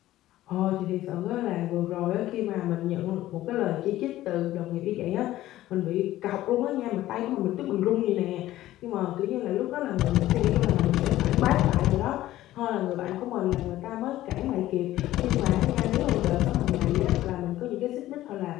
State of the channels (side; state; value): right; quieter; 14.9 dB